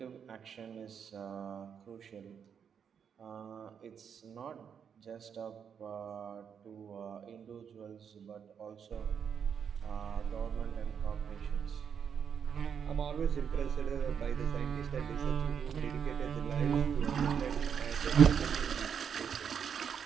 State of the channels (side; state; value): left; quieter; 7.4 dB